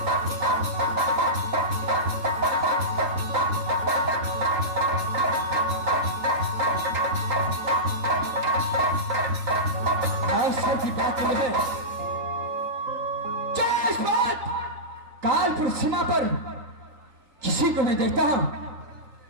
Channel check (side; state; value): left; late; 3.9 ms